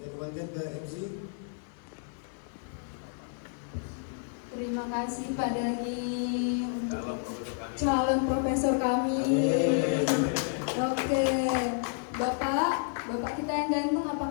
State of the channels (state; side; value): silent; right; 58 dB below the other